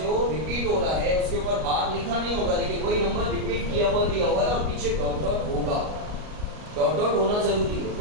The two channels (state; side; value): late; left; 38 ms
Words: रिपीट हो रहा है उसके ऊपर बार लिखा नहीं होगा, लेकिन वही नंबर रिपीट किया हुआ दिया हुआ है और पीछे डॉट डॉट होगा, डॉट डॉट होना जरूरी है,